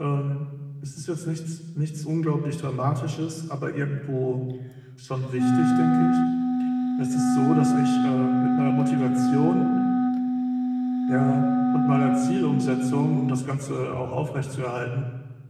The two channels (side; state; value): both; identical; correlation 1.00